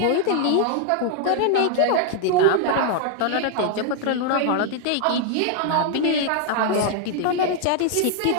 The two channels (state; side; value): different; both; correlation 0.00